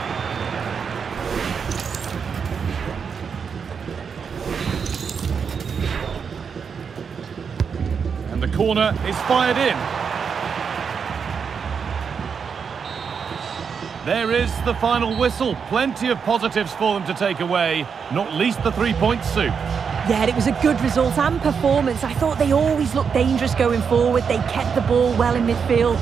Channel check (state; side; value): quieter; left; 6.3 dB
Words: And the corner is fired in. There is the final whistle. Plenty of positives for them to take away, not least the 3-point soup. Yeah, it was a good result and performance. I thought they always looked dangerous going forward. They kept the ball well in midfield,